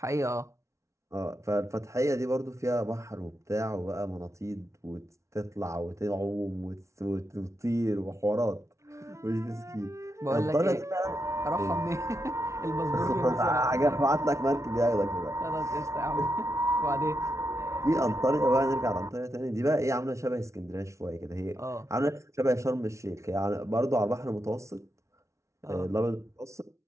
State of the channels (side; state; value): left; late; 0.14 ms